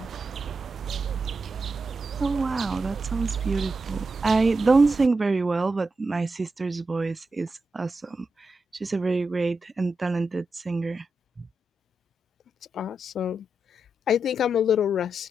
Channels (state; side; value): normal; both; correlation 0.87